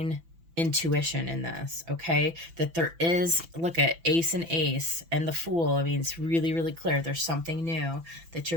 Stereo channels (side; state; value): left; late; 6.0 ms